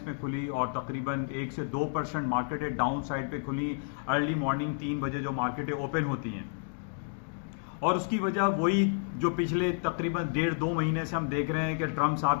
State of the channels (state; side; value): silent; right; digital silence